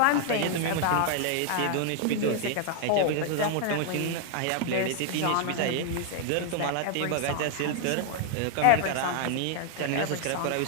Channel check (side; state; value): both; different; correlation 0.00